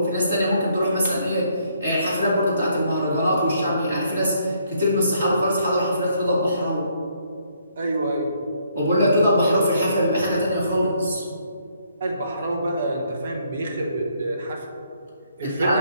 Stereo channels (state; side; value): inverted; both; correlation -0.69